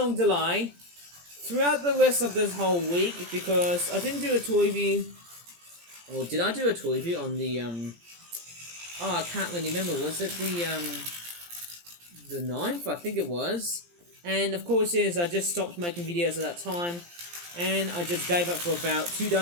delay throughout the rest of this whole week, because I didn't do a toy review, or did I do a toy review on the, I can't really remember, was it the 9th, I think it was. And of course I just stopped making videos at that time, and I just gave up for about 2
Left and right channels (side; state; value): left; late; 17 ms